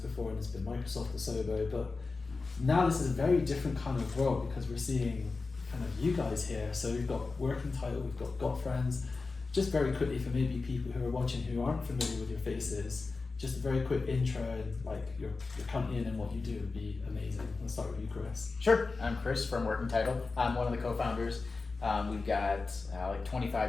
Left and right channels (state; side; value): quieter; right; 4.0 dB